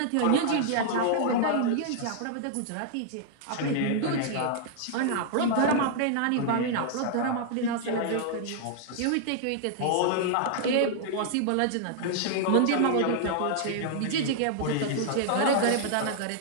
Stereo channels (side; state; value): both; different; correlation -0.01